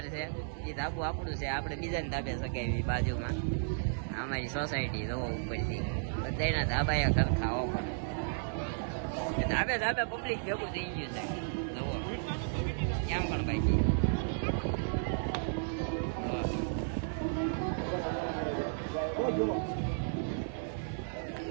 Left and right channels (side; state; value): left; silent; 55 dB below the other